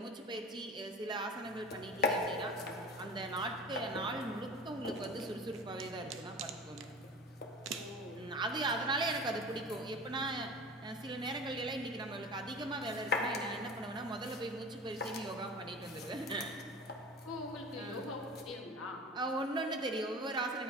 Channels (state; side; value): normal; both; correlation 0.36